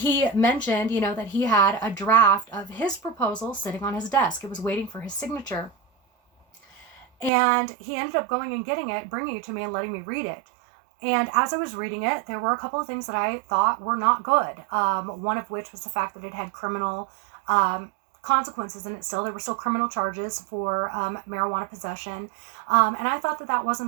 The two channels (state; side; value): drops out; left; at 7.3 s